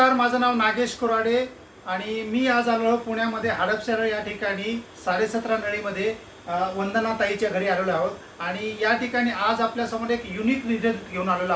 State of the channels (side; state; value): both; identical; correlation 1.00